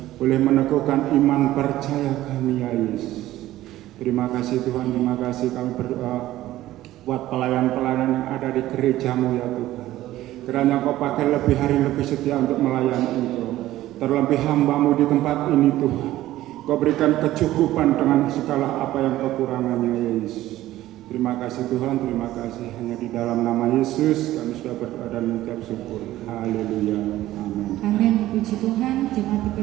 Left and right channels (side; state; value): left; quieter; 15.0 dB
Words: boleh meneguhkan iman percaya kami ya Yesus. Terima kasih Tuhan, terima kasih kami berdoa buat pelayan-pelayan yang ada di gerejamu ya Tuhan. Kiranya Kau pakai lebih hari lebih setia untuk melayani Engkau. Terlebih hamba-Mu di tempat ini Tuhan, Kau berikan kecukupan dengan segala apa yang kekurangannya ya Yesus. Terima kasih Tuhan, terima kasih. Hanya di dalam nama Yesus kami sudah berdoa dan mengucap syukur. Haleluya, amin. Amin, puji Tuhan. Jemaat